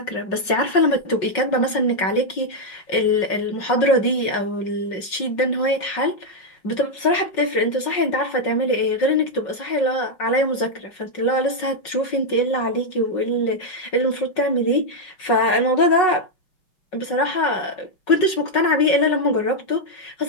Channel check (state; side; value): late; right; 5.4 ms